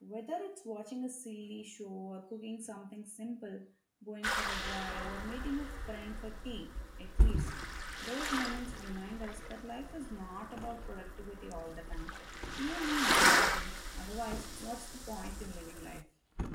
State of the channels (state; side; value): identical; both; correlation 1.00